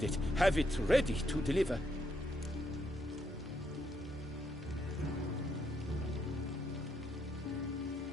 it. Have it ready to deliver.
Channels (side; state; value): both; normal; correlation 0.76